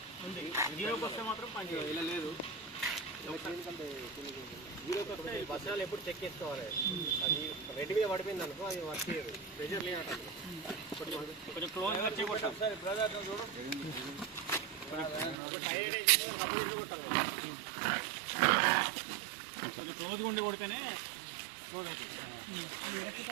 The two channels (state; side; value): drops out; left; at 15.4 s